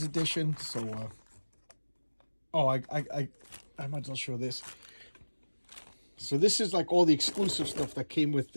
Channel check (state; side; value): inverted; both; correlation -1.00